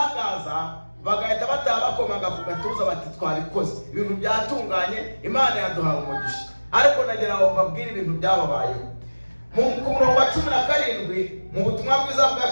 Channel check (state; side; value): inverted; both; correlation -1.00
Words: bagahita bataha bakomaga ku gatuza bati twabikoze, ibintu byatunganye, Imana yaduhaye umugisha. Ariko nagira ngo mbabwire ibintu byababayeho. Ku murongo wa 17 mu butumwa bwiza bwa